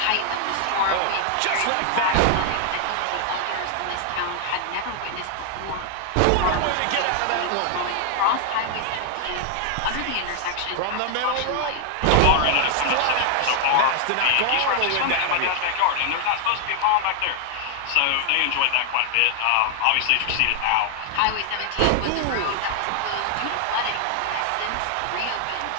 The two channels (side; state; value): both; different; correlation 0.00